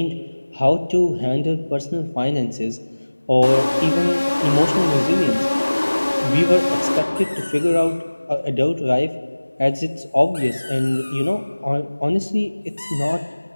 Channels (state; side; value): inverted; both; correlation -1.00